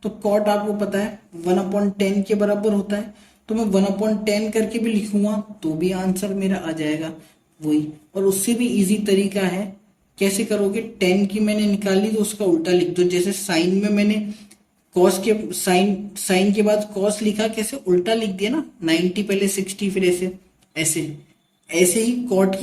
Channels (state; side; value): identical; both; correlation 1.00